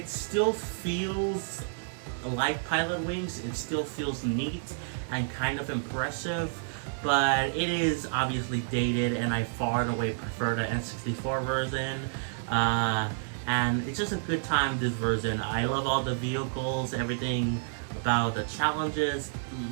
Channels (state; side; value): silent; left; digital silence